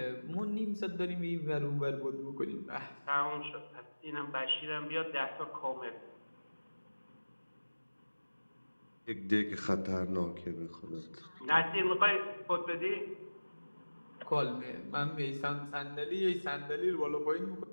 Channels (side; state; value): both; inverted; correlation -1.00